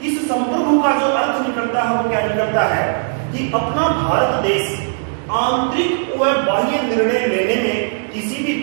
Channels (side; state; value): left; silent; digital silence